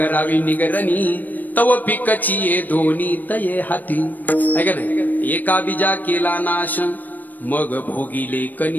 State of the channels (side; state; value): right; late; 0.087 ms